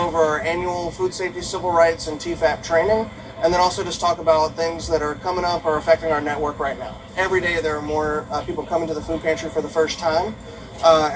over our annual food safety, civil rights, and TFAP training, and then also just talk about things that are coming up or affecting our network right now. Every day there are more people coming to the food pantry for the first time,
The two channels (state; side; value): identical; both; correlation 1.00